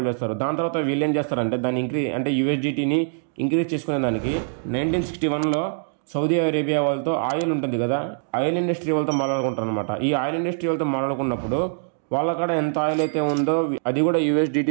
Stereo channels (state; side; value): silent; left; digital silence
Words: చేస్తారు. దాని తర్వాత వీళ్ళు ఏం చేస్తారంటే దాన్ని అంటే యూఎస్డిటీని ఇంక్రీజ్ చేసుకునే దానికి 1961లో సౌదీ అరేబియా వాళ్ళతో ఆయిల్ ఉంటుంది కదా, ఆయిల్ ఇండస్ట్రీ వాళ్ళతో మాట్లాడుకుంటారు అనమాట. ఈ ఆయిల్ ఇండస్ట్రీ వాళ్ళతో మాట్లాడుకున్నప్పుడు వాళ్ళ కాడ ఎంత ఆయిల్ అయితే ఉందో అది కూడా